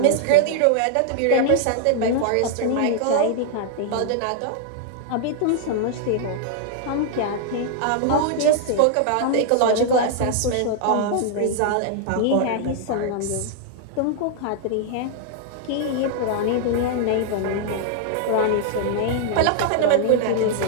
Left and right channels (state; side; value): different; both; correlation 0.00